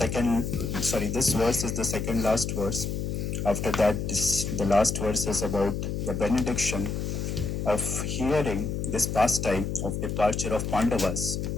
this verse is the second last verse. After that, the last verse is about the benediction of hearing this pastime of departure of Pandavas.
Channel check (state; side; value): noise; left; hum, 2 dB below the sound